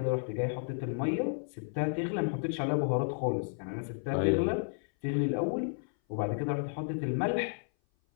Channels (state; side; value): silent; right; 56 dB below the other